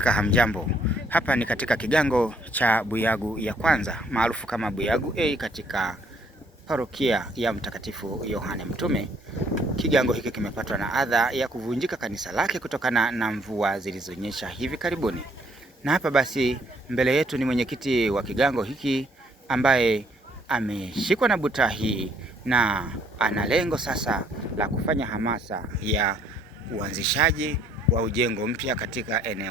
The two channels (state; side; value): normal; both; correlation 0.65